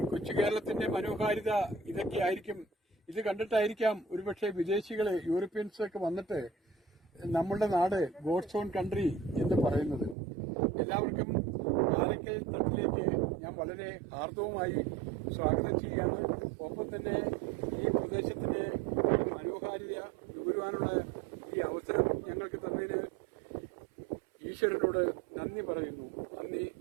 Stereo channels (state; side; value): drops out; left; at 10.2 s